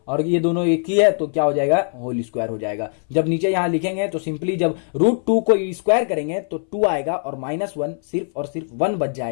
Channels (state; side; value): silent; right; 62 dB below the other